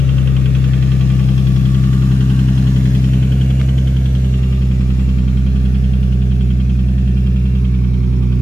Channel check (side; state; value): both; normal; correlation 0.93